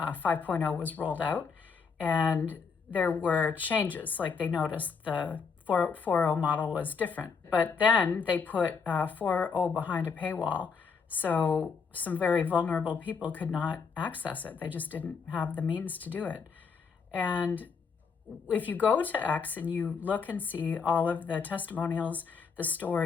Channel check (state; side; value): quieter; right; 5.5 dB